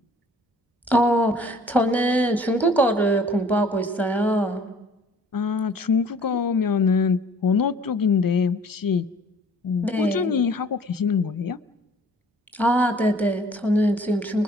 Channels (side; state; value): both; normal; correlation 0.54